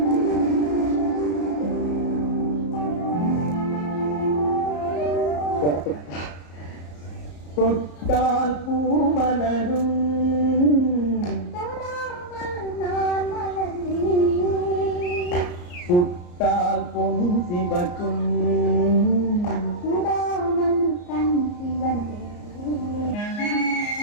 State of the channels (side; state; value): right; late; 34 ms